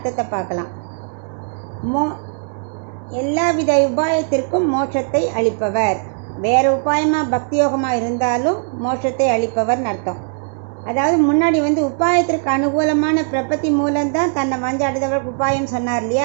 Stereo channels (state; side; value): silent; left; 67 dB below the other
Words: பார்க்கலாம். எல்லா வித உபாயத்திற்கும் மோட்சத்தை அளிப்பவர். வேறு உபாயமாக பக்தி யோகமாக இருந்தாலும் மோட்சத்தை அளிப்பவர்னு அர்த்தம். அதாவது முன்னாடி உபாயத்திற்கு அனுகூலமான பிரபத்தி மூலம்தான் தன்னை வஞ்சாடுதவர்களுக்கு உபாயம் சொன்னார்